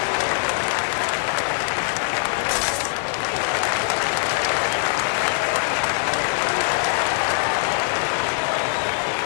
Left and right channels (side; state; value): right; silent; 64 dB below the other